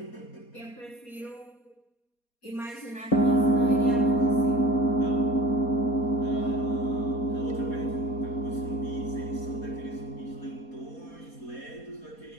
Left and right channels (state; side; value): late; right; 4.2 ms